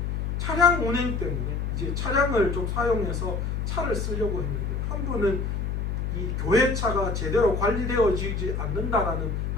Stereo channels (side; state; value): left; noise; hum, 1 dB below the sound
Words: 차량 운행 때문에 이제 차량을 좀 사용해서 차를 쓰려고 했는데, 한 분은 이 교회차가 제대로 관리되어지지 않는다라는